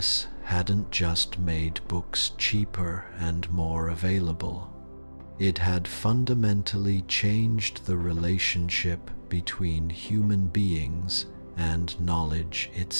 hadn't just made books cheaper and more available. It had fundamentally changed the relationship between human beings and knowledge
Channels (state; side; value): inverted; both; correlation -1.00